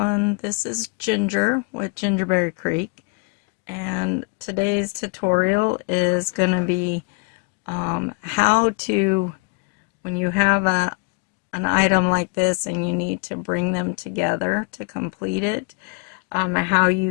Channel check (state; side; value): quieter; right; 32.2 dB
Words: this is Ginger with Gingerberry Creek, and today's tutorial is going to be how to, when you have an item like this and you need to bring them together to complete it, how